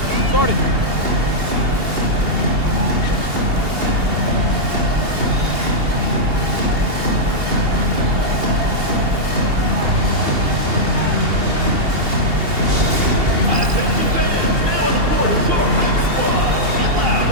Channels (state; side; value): late; left; 2.8 ms